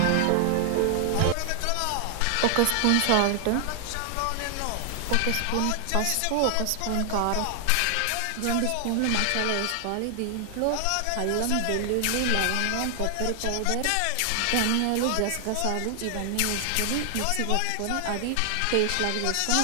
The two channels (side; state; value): both; different; correlation 0.00